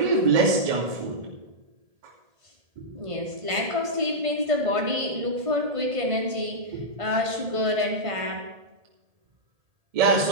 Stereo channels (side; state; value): left; late; 1.8 ms